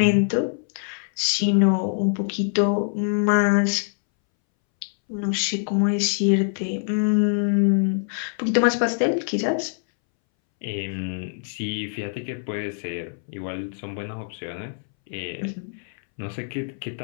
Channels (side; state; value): right; silent; 62 dB below the other